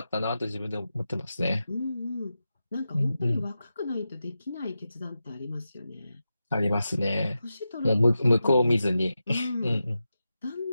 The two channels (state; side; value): inverted; both; correlation -0.91